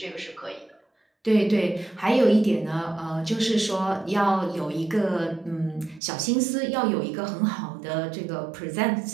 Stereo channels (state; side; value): drops out; left; at 6.0 s